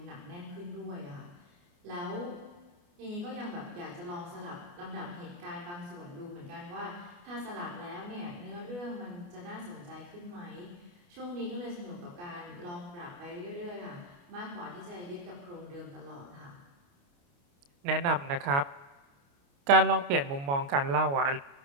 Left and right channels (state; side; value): late; left; 29 ms